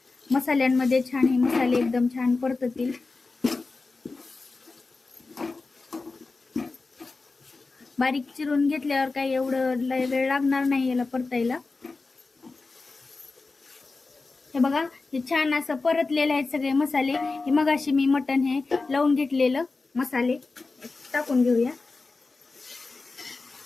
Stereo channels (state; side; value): quieter; right; 3.8 dB